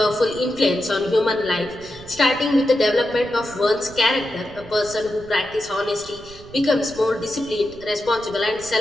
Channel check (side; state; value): right; noise; rumble, 19 dB below the sound